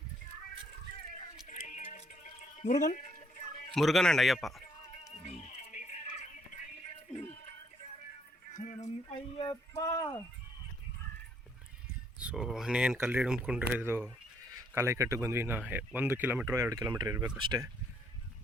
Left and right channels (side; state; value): both; normal; correlation 0.68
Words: ಮುರುಗನ್ ಅಂಡ್ ಅಯ್ಯಪ್ಪ. ಸೊ ಇನ್ನೇನು ಕಲ್ಲು ಹಿಡ್ಕೊಂಡ್ರೆ ಇದು ಕಾಲೈಕಟ್ಟಿಗೆ ಬಂದ್ವಿ. 1 ಕಿಲೋಮೀಟ್ರ್ 2 ಕಿಲೋಮೀಟ್ರ್ ಇರಬೇಕು ಅಷ್ಟೇ